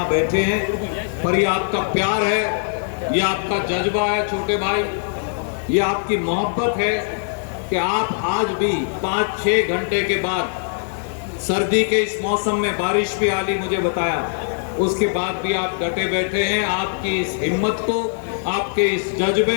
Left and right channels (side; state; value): right; silent; digital silence